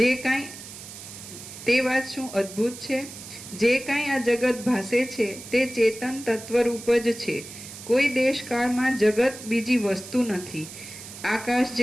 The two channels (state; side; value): noise; right; hiss, 14 dB below the sound